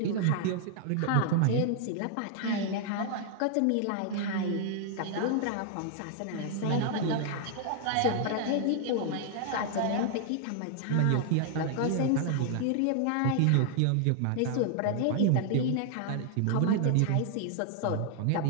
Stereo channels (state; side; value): different; both; correlation 0.00